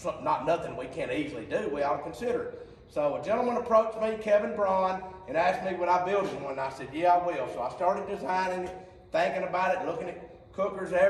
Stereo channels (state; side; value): identical; both; correlation 1.00